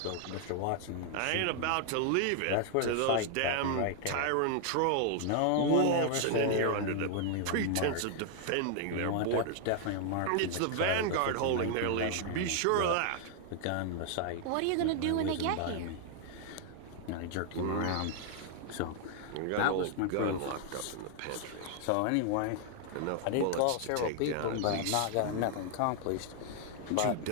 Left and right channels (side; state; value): both; different; correlation 0.00